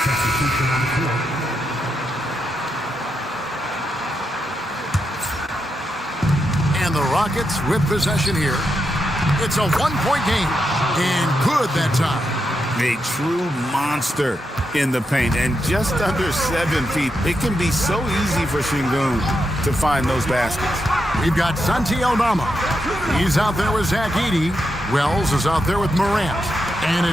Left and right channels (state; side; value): normal; both; correlation 0.84